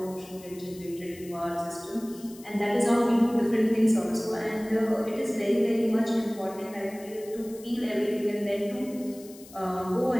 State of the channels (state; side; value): noise; left; hiss, 20 dB below the sound